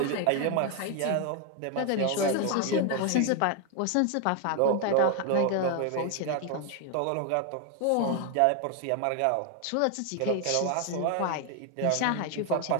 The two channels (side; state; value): both; different; correlation 0.01